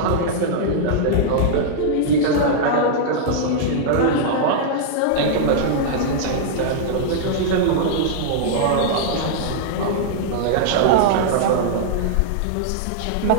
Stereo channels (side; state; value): both; different; correlation -0.01